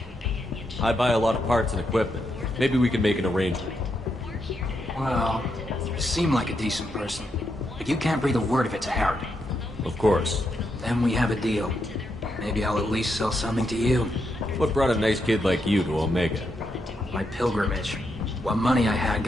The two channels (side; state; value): both; normal; correlation 0.81